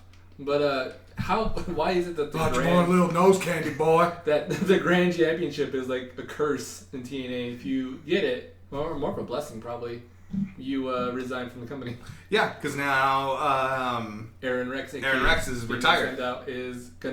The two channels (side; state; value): both; identical; correlation 1.00